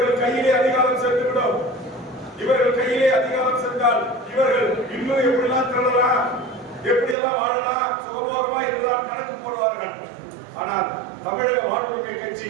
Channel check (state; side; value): drops out; left; at 7.2 s